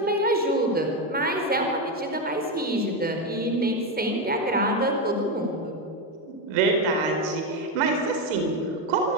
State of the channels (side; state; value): both; normal; correlation 0.10